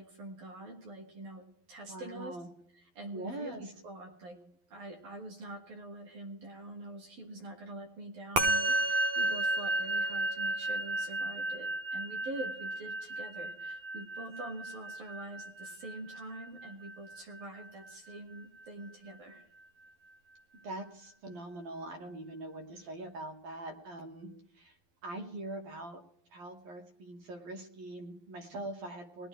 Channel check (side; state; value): left; late; 12 ms